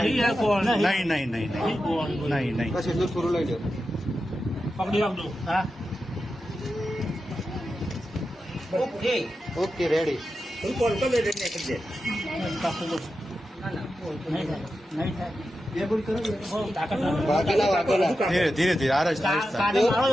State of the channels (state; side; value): normal; both; correlation 0.90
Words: નહીં નહીં નહીં નહીં નહીં બસ એટલું થોડું લઈ લો પકડી રાખજો હા ઓકે રેડી ધીરે ધીરે ધીરે આ રસ્તા